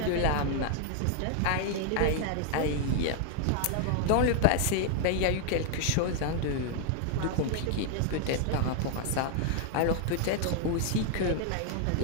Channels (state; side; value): different; both; correlation 0.00